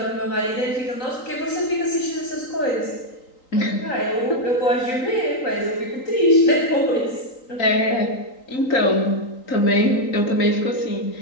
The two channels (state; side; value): late; right; 3.9 ms